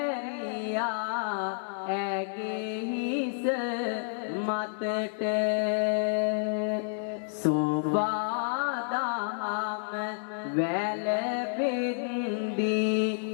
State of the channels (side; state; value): right; silent; 58 dB below the other